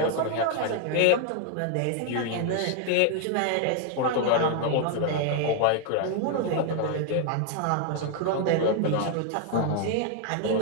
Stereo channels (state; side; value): different; both; correlation 0.00